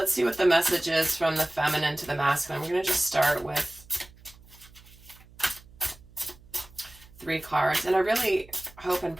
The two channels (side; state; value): right; noise; hum, 24 dB below the sound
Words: see what the message is from the feminine to the masculine. We're going to just start with 3 cards. And I really hope and